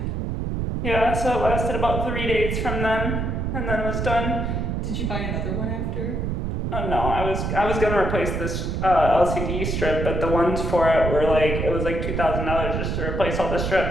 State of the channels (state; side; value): noise; right; rumble, 1 dB below the sound